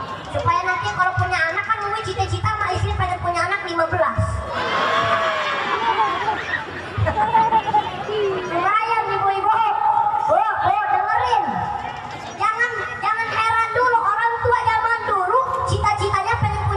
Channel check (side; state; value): both; identical; correlation 1.00